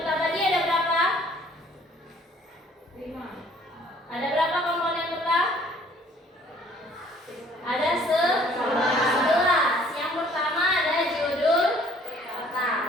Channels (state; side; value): normal; both; correlation 0.57